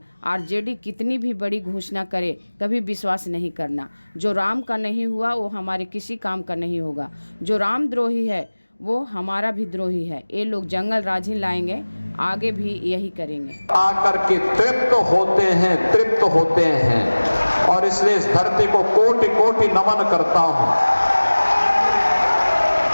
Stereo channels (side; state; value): both; inverted; correlation -1.00